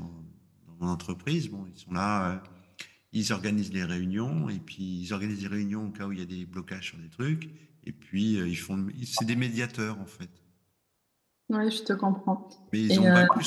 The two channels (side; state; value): both; identical; correlation 1.00